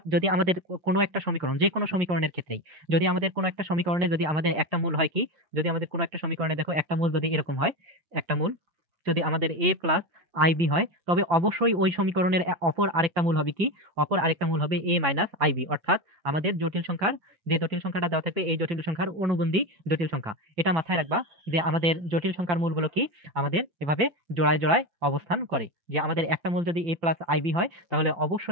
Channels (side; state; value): left; late; 5.9 ms